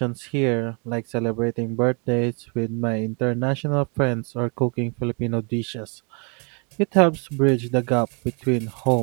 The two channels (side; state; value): left; quieter; 34.8 dB